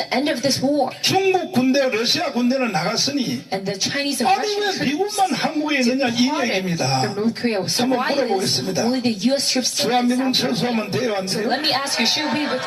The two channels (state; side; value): identical; both; correlation 1.00